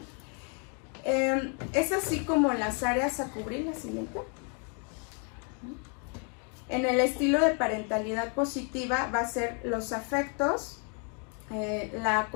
Es así como las áreas a cubrir. La siguiente. En el estilo de parentalidad positiva va a ser los afectos, la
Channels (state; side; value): quieter; right; 38.7 dB